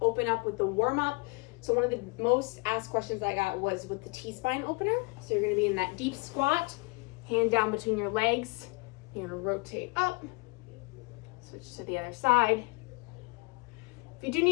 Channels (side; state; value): right; quieter; 27.3 dB